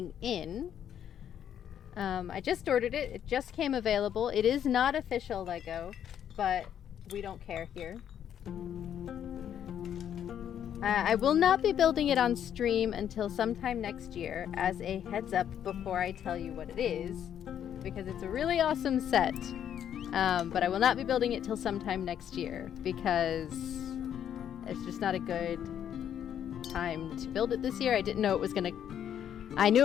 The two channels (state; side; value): quieter; right; 9.6 dB